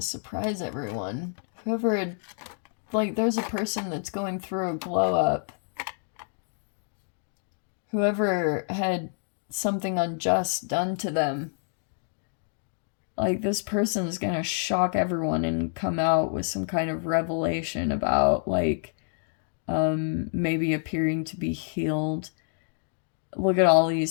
surprise everyone. Whoever, like, there's a person that's going through a glow up. Whoever had something unjust done to them, like, this person's gonna shock everyone and come out with some kind of revelation about, like, maybe appearing to be healed. Look at all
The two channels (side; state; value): right; silent; 59 dB below the other